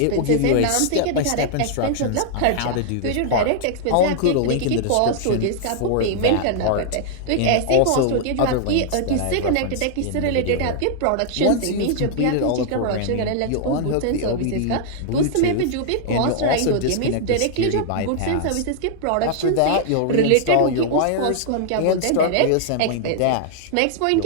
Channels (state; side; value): different; both; correlation -0.01